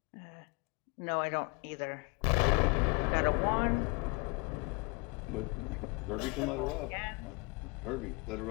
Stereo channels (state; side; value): quieter; right; 28.2 dB